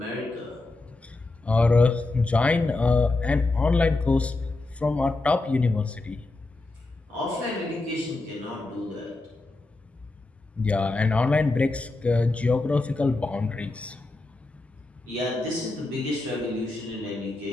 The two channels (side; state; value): right; quieter; 3.1 dB